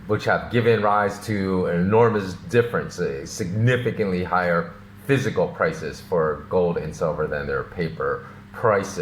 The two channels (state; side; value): identical; both; correlation 1.00